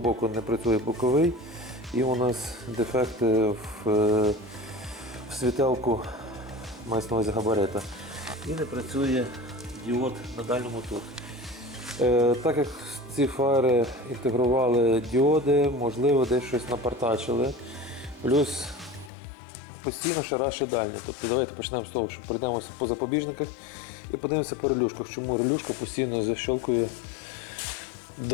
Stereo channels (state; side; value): drops out; right; at 19.1 s